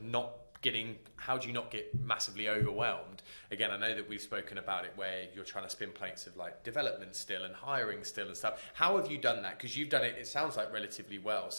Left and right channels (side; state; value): both; inverted; correlation -1.00